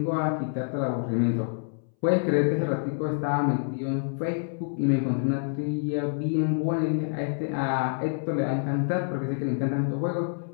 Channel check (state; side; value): silent; right; 60 dB below the other